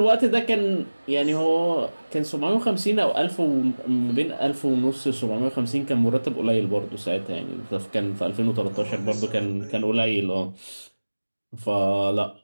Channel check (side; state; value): both; inverted; correlation -1.00